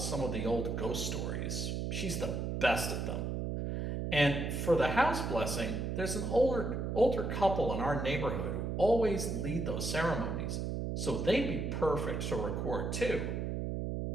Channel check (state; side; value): noise; right; hum, 2 dB below the sound